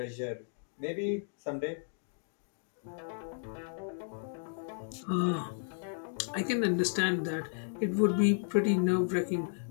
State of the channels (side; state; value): right; silent; digital silence